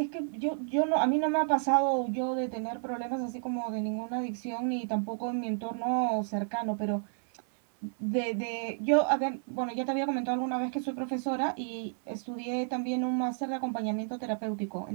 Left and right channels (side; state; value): left; silent; 57 dB below the other